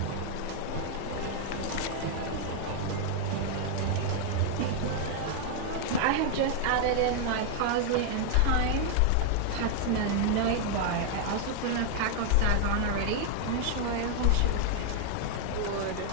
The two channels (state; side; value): different; both; correlation 0.00